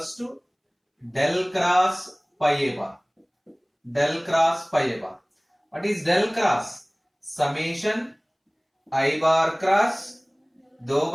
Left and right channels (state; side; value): identical; both; correlation 1.00